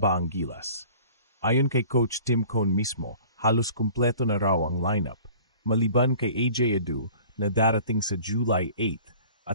ang Gilas? Ayon kay Coach Tim Cone mismo, halos kumpleto na raw ang lineup, maliban kay AJ Edu na darating sa July 8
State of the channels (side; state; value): both; inverted; correlation -0.46